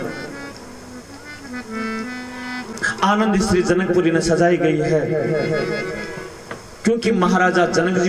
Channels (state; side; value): identical; both; correlation 1.00